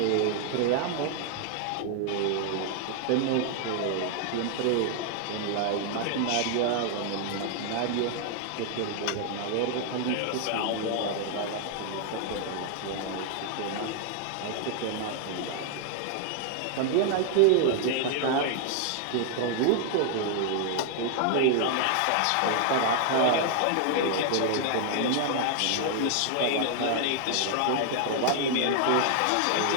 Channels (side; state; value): both; different; correlation 0.00